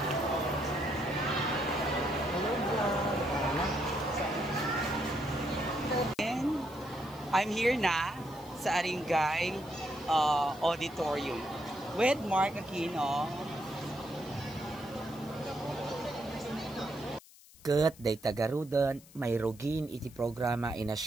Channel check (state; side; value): noise; left; hiss, 23 dB below the sound